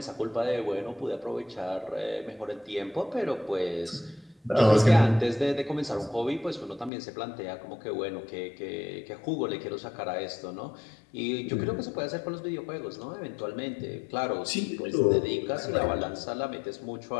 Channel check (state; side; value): drops out; right; at 6.9 s